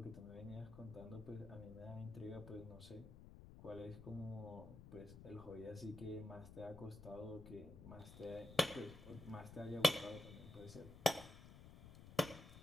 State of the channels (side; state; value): left; noise; rumble, 14 dB below the sound